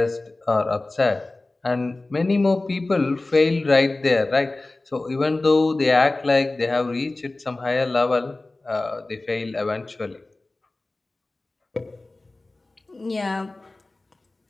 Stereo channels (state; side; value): quieter; right; 3.0 dB